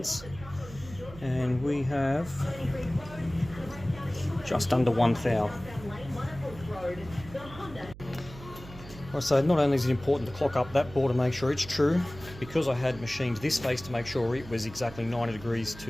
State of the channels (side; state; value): right; noise; hum, 16 dB below the sound